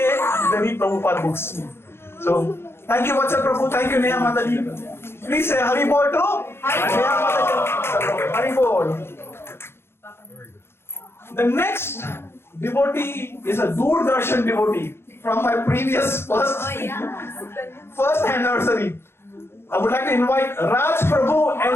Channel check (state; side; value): late; right; 0.12 ms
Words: they read Prabhupada books. So, thank you Vatsal Prabhu, thank you Neha Mataji. Please say Hari Bol to Neha Mataji. Hari Bol. The next devotee is a Doordarshan devotee from my previous first anniversary. I would like to invite Raj Prabhu